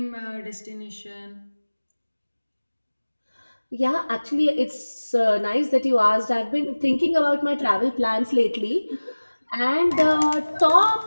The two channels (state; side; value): inverted; both; correlation -1.00